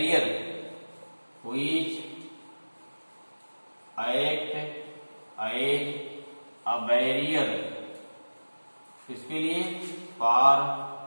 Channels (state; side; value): inverted; both; correlation -1.00